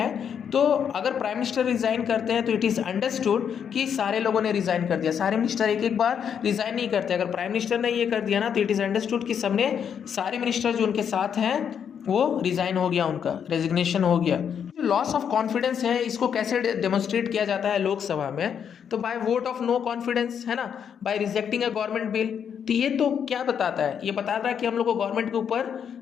तो अगर प्राइम मिनिस्टर रिजाइन करते हैं तो इट इज़ अंडरस्टूड कि सारे लोगों ने रिजाइन कर दिया। सारे मिनिस्टर एक एक बार रिजाइन नहीं करते। अगर प्राइम मिनिस्टर ने ये कर दिया ना तो इट इज़ अंडरस्टूड कि सबने, सारे मिनिस्टर जो उनके साथ हैं वो रिजाइन हो गया, उनका रेजिग्नेशन हो गया। जो लॉस ऑफ कॉन्फिडेंस है इसको कैसे डेमोन्स्ट्रेट किया जाता है लोकसभा में? तो by vote of no confidence, है ना, by rejecting a government bill. तो ये तो क्या बताता है? ये बताता है कि हम लोग को गवर्नमेंट के ऊपर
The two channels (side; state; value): right; quieter; 7.9 dB